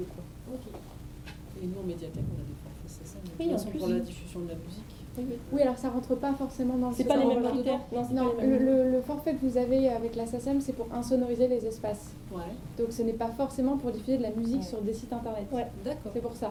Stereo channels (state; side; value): identical; both; correlation 1.00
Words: quoi. Ok. Et nous, en médiathèque, on a des forfaits, c'est ça. Oui, en plus. Pour la diffusion de la musique. Oui, alors ça rentre pas forcément dans le... C'est pas les mêmes critères. Non, c'est non, pas les mêmes. le forfait que vous avez avec la SACEM, c'est pour insonoriser les espaces. Ouais. Donc ce n'est pas forcément pour diffuser de la musique sur des sites internet. Ouais, d'accord. C'est pour